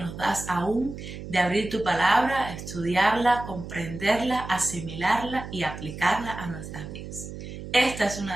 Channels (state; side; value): noise; right; hum, 10 dB below the sound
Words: das aún de abrir tu palabra, estudiarla, comprenderla, asimilarla y aplicarla a nuestras vidas. Este es uno